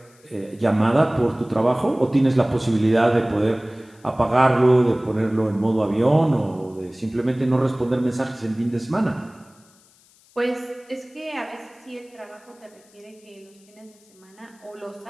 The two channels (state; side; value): noise; left; hiss, 30 dB below the sound